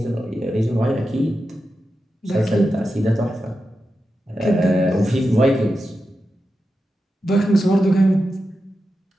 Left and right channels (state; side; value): normal; both; correlation 0.90